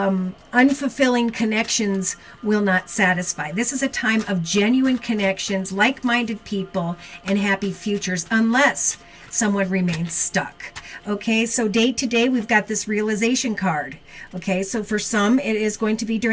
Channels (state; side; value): identical; both; correlation 1.00